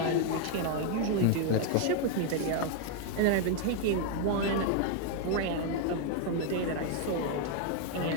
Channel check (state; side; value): different; both; correlation 0.00